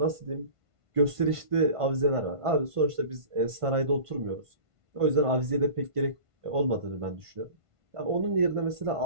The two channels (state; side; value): late; left; 1.5 ms